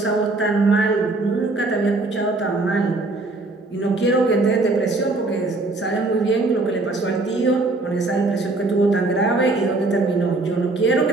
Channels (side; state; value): left; quieter; 3.1 dB